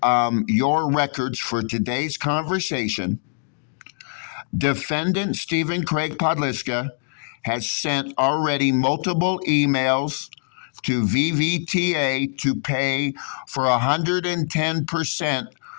your records for today's conversation? Defendant Stephen Craig Podliska has sent already multiple emails to VVTA to pay for 110%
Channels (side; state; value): right; silent; digital silence